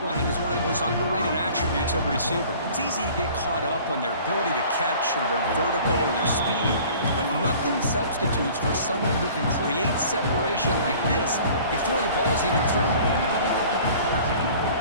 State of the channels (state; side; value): inverted; both; correlation -0.48